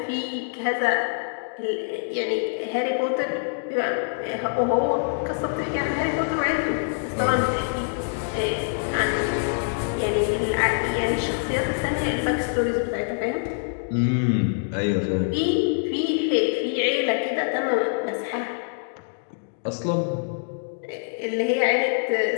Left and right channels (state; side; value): silent; right; digital silence